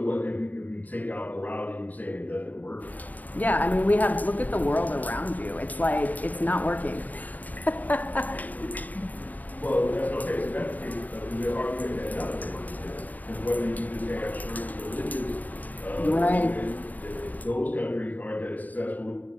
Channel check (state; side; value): late; right; 0.079 ms